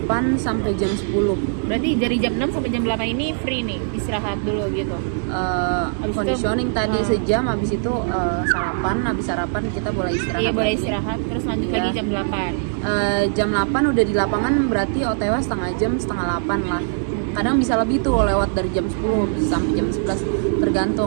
sampai jam 10. Berarti dari jam 6 sampai jam 8 ini free nih, istirahat dulu gitu. Conditioning tadi sejam, habis itu sarapan, habis sarapan kita boleh istirahat. Iya, boleh istirahat, terus lanjut lagi jam 8. Jam 8 udah di lapangan, berarti OTW setengah jam, setengah 8 lah. Kadang bisa lebih tuh, lewat dari jam 10 bisa sampai jam 11,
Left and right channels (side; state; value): left; silent; 65 dB below the other